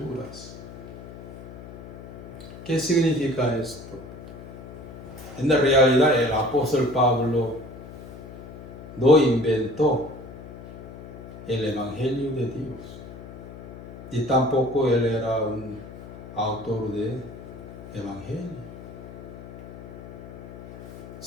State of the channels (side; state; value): left; noise; hum, 14 dB below the sound